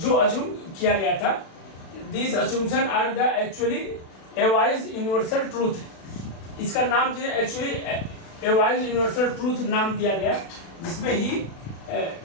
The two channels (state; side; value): late; right; 36 ms